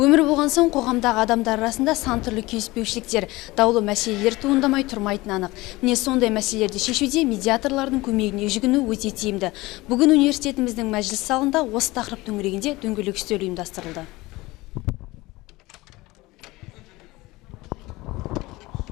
болған соң қоғамдағы адамдар арасында сан түрлі келіспеушіліктер, даулы мәселелер туындамай тұрмайтыны анық. Міне сондай мәселелерді шешуде медиаторлардың көмегіне жүгіну өте тиімді. Бүгін университетіміздің мәжіліс залында осы тақырып төңірегінде дөңгелек үстел ұйымдастырылды.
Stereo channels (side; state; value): right; quieter; 20.6 dB